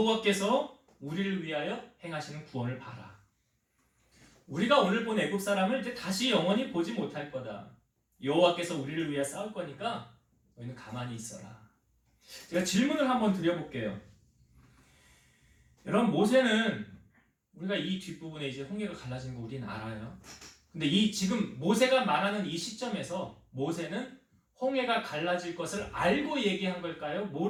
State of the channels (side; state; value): both; identical; correlation 1.00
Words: 우리를 위하여 행하시는 구원을 봐라. 우리가 오늘 본 애굽 사람을 이제 다시 영원히 보지 못할 거다. 여호와께서 우리를 위해 싸울 거니까 너희는 가만히 있어라. 제가 질문을 한번 드려볼게요. 여러분, 모세는 우리가 이 뒷부분에 이제 홍해가 갈라진 거 우리는 알아요. 근데 이 지금 모세가 말하는 이 시점에서 모세는 홍해가 갈라질 것을 알고 얘기한 걸까요?